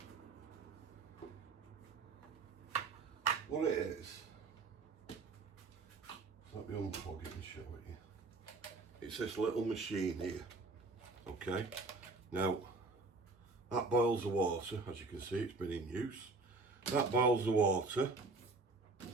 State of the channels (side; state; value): left; quieter; 3.6 dB